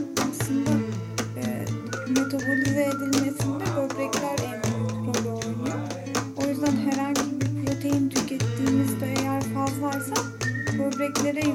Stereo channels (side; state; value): both; identical; correlation 1.00